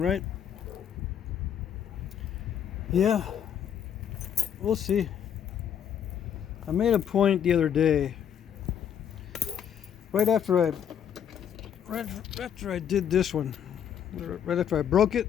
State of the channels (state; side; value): quieter; right; 8.8 dB